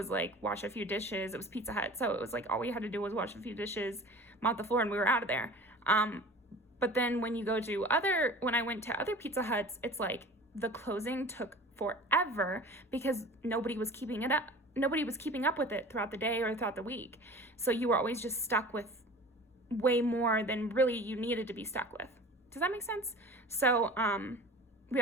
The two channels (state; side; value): normal; both; correlation 0.40